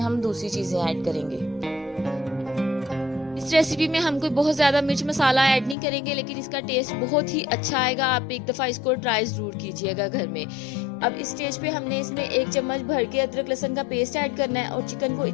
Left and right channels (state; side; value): drops out; right; at 5.8 s